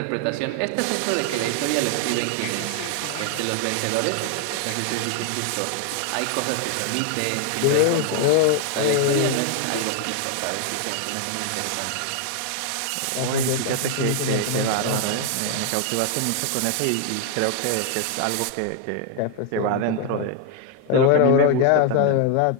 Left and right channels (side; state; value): both; different; correlation 0.00